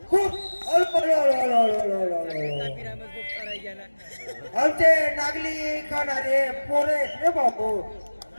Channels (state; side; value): inverted; both; correlation -1.00